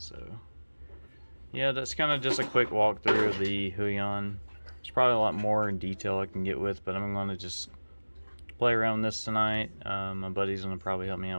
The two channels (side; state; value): both; inverted; correlation -1.00